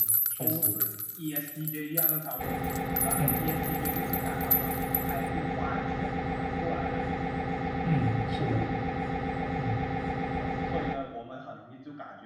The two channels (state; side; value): identical; both; correlation 1.00